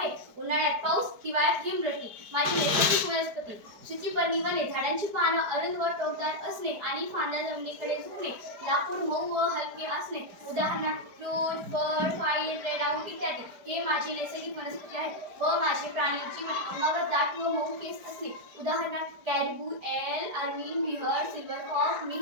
उन्हाळ्यात पाऊस, हिवाळ्यात हिमवृष्टी। माझी नैसर्गिक वनस्पती सूचीपर्णी वने, झाडांची पानं अरुंद व टोकदार असणे आणि फांद्या जमिनीकडे झुकणे, लाकूड मऊ व हलके असणे, उदाहरणार्थ फ्रूट, फळ, फाईल, रेडआउट इत्यादी हे माझी नैसर्गिक वनस्पती आहेत। व माझे प्राणी जीवन अंगावर दाट व मऊ केस असणे, उदाहरणार्थ कॅरबू, एल, अर्मिन, बिहर, सिल्व्हरफॉक्स,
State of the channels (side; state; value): left; late; 4.8 ms